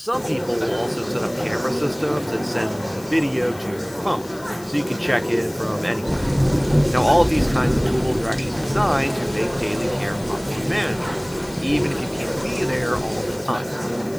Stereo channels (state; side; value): noise; left; hiss, 21 dB below the sound